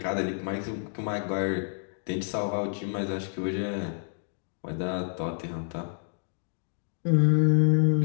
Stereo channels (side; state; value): right; silent; digital silence